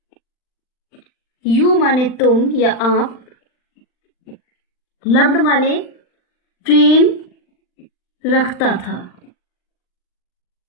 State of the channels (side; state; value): right; late; 39 ms